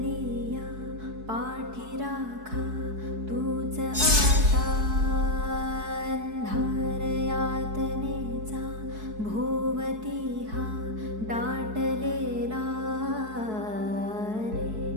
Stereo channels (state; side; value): late; left; 4.6 ms